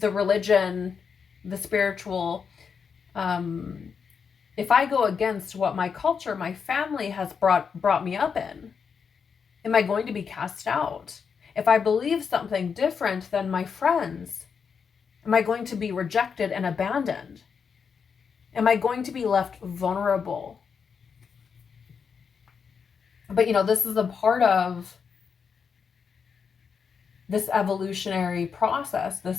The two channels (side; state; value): right; quieter; 6.2 dB